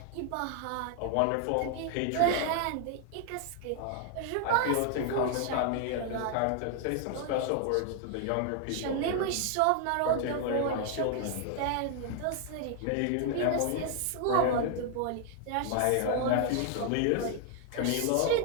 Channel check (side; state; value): both; different; correlation 0.00